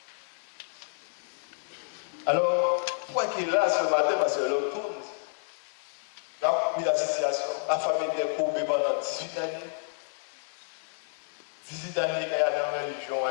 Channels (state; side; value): silent; right; digital silence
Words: Alors, pourquoi qu'il est là ce matin? Parce que l'autre tourne. Là, la situation, la famille était courbée pendant 18 années. 18 années qu'il y a dans la religion,